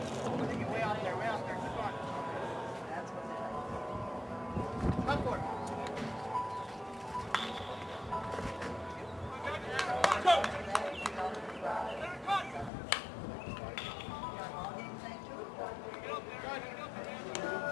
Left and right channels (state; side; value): drops out; right; at 12.7 s